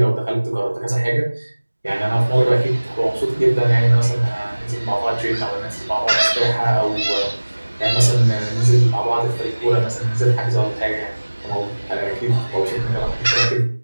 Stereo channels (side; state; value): both; inverted; correlation -1.00